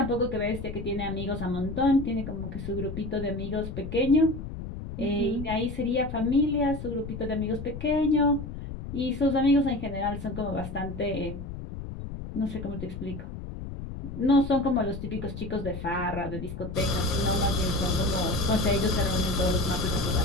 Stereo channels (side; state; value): left; noise; rumble, 9 dB below the sound